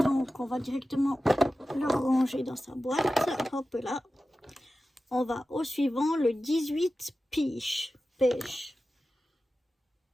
on va directement le ranger dans sa boîte. Hop là. On va au suivant, le 18 pêche.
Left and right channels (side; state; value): both; normal; correlation 0.94